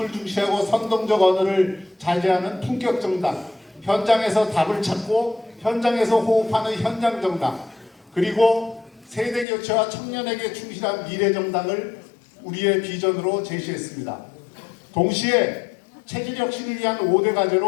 중시하고 선동적 언어를 자제하는 품격정당, 현장에서 답을 찾고 현장에서 호흡하는 현장정당, 그리고 세대교체와 청년에게 충실한 미래정당을 우리의 비전으로 제시했습니다. 동시에 체질 혁신을 위한 5대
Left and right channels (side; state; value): right; drops out; at 9.5 s